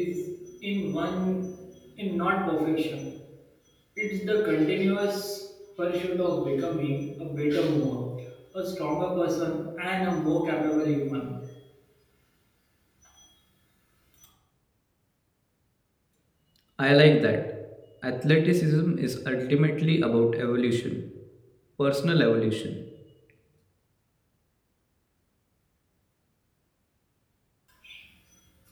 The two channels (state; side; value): identical; both; correlation 1.00